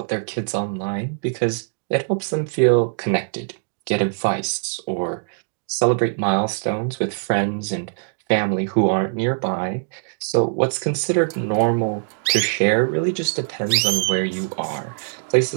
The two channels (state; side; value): silent; left; digital silence